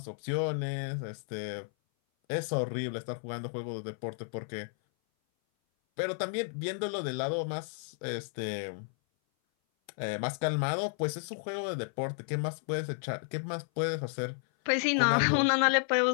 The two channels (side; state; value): right; silent; 56 dB below the other